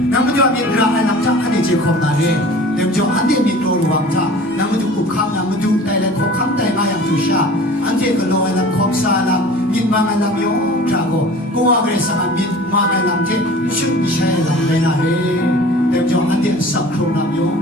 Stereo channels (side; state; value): both; normal; correlation 0.43